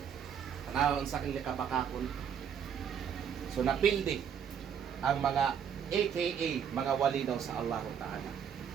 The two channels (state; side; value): quieter; left; 8.0 dB